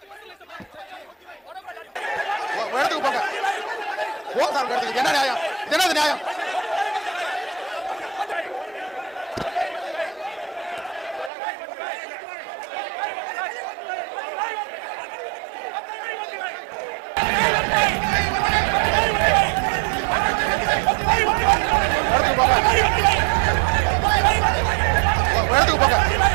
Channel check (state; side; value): drops out; left; at 11.3 s